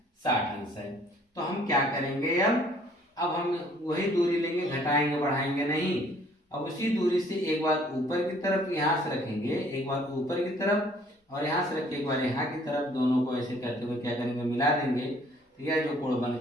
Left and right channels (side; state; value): both; normal; correlation 0.59